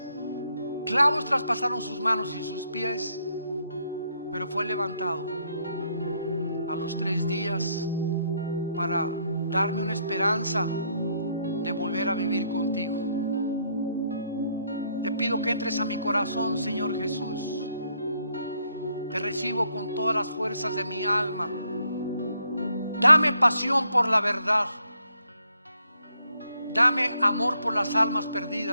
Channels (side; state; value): both; inverted; correlation -0.73